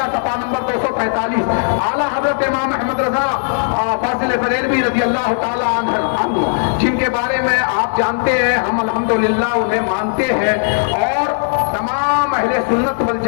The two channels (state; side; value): silent; right; 59 dB below the other